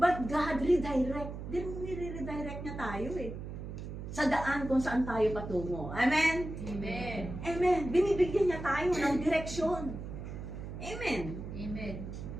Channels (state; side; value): noise; right; hum, 8 dB below the sound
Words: God redirect. Nire-redirect niya tayo eh. Sa daan kung saan tayo patungo. Amen? Amen. Amen. Binibigyan niya tayo ng direksyon. Amen. Amen.